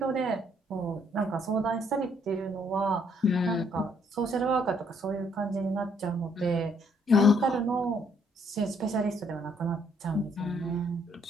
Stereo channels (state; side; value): normal; both; correlation 0.68